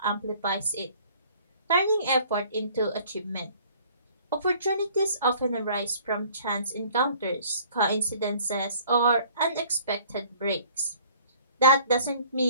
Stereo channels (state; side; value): inverted; both; correlation -0.53